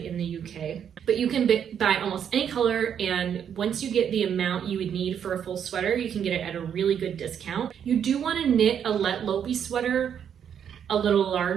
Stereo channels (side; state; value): left; quieter; 8.5 dB